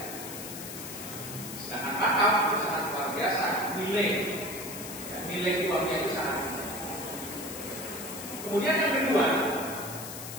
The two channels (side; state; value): left; noise; hiss, 9 dB below the sound